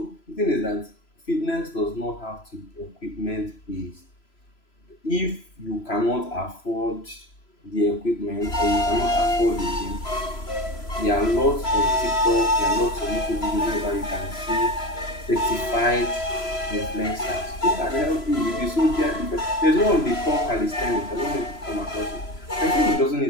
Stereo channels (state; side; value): late; right; 3.0 ms